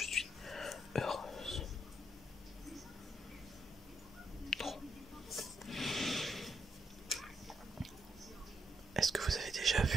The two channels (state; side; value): normal; both; correlation 0.78